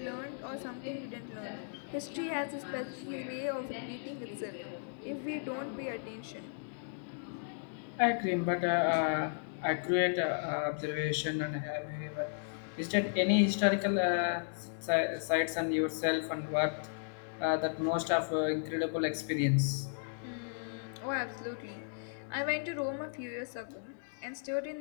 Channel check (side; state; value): right; silent; digital silence